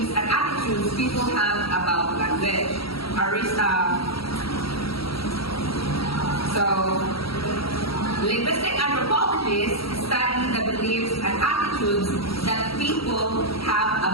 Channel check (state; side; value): late; right; 0.75 ms